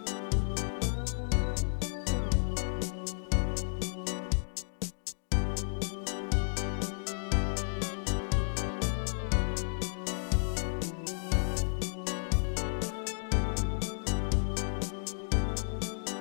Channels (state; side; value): silent; right; digital silence